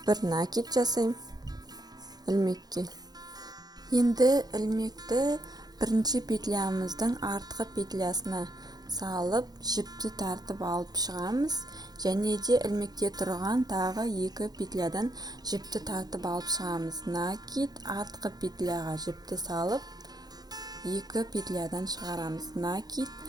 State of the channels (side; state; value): left; late; 0.19 ms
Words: бір накид жасаймын ілмекке. Енді ілмекті бірінші петлямыздың артқы петлясына салып, жіпті тартып алып шығамыз. Және де ілмекте тұрған тағы екі петлядан жіпті тартып алып шығамыз. Накид, артқы петляға жіпті салып, екі петлядан шығарамыз. Накид,